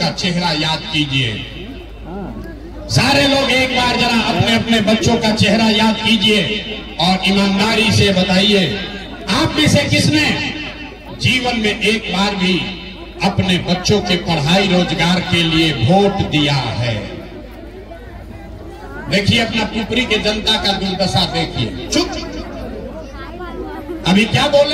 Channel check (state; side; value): identical; both; correlation 1.00